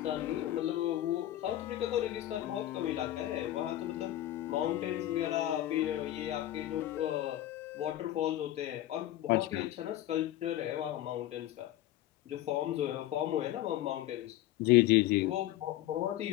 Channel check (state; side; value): quieter; right; 14.1 dB